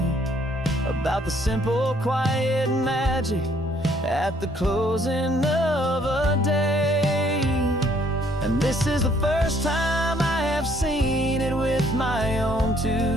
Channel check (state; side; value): normal; both; correlation 0.64